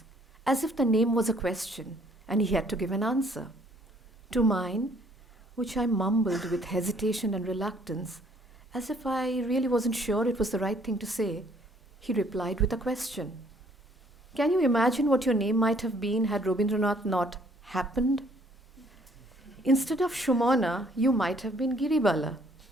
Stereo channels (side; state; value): both; normal; correlation 0.62